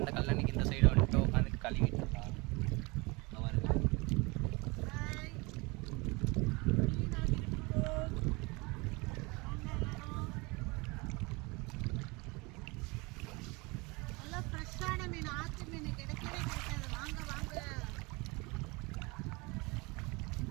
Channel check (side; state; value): left; quieter; 26.3 dB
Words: இந்த கல்லணைக்கு இந்த சைடு வந்துட்டு உட்காந்து கழுவிட்டு இருக்கோம்.